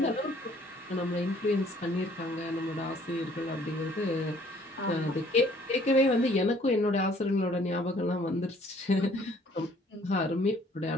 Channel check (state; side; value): normal; both; correlation 0.59